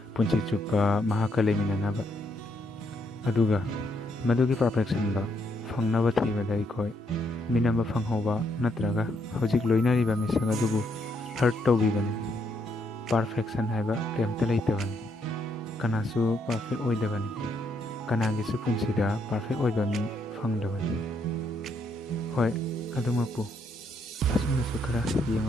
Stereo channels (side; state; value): both; normal; correlation 0.74